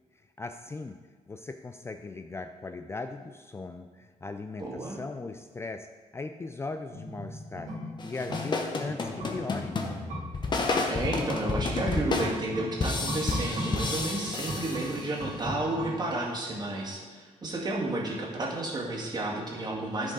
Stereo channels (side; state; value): both; normal; correlation 0.60